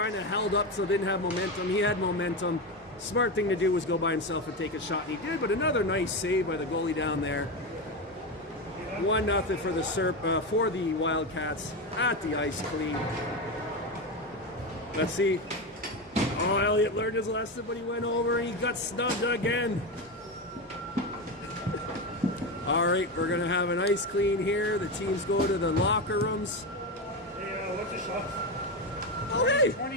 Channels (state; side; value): normal; both; correlation 0.16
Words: of held up, so didn't have momentum. He had momentum. Smart thing to do was go by himself and take a shot, and he did. But another nice save by the goalie down there. 1-0 for the Wildcats at the ice clean. Let's see. Oh, Elliott learned his lesson, but he went over and he got snubbed again. All right, we're going to have an ice clean here. The teams go to the locker rooms. Hey, what's the shot? Oh, hey!